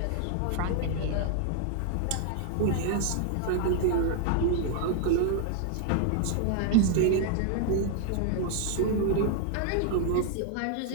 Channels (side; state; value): both; different; correlation 0.00